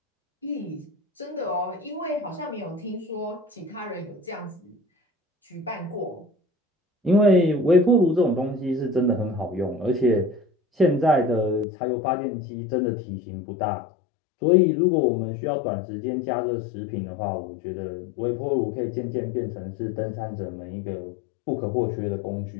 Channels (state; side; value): drops out; right; at 11.7 s